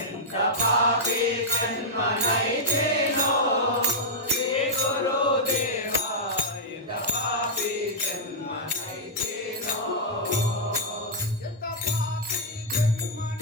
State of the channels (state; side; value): normal; both; correlation -0.07